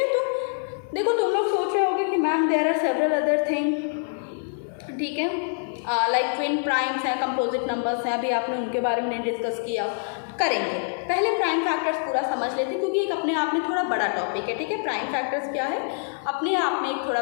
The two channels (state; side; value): silent; right; 57 dB below the other